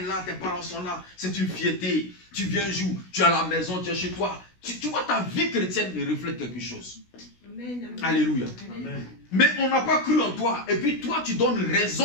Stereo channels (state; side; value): late; right; 16 ms